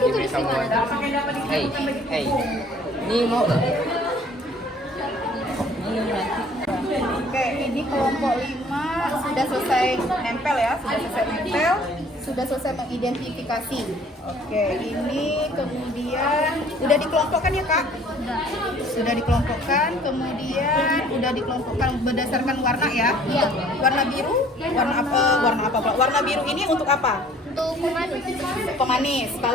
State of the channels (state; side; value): normal; both; correlation 0.55